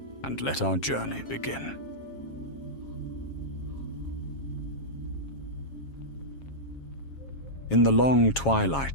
and let our journey begin. In the long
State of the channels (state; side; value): late; right; 7.4 ms